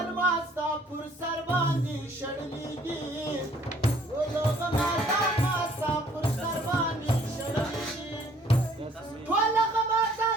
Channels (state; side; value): normal; both; correlation 0.60